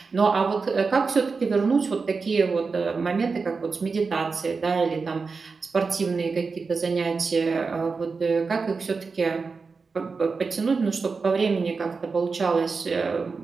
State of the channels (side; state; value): left; quieter; 4.6 dB